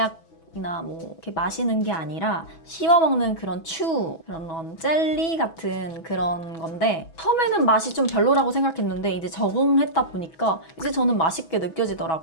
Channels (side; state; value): right; late; 6.1 ms